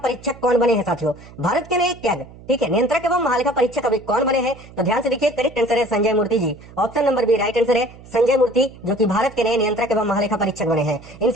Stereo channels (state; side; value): noise; right; hum, 20 dB below the sound